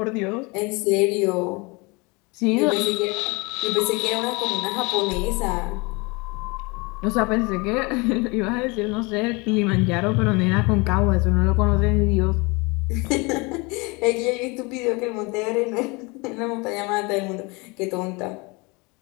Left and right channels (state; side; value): quieter; right; 27.2 dB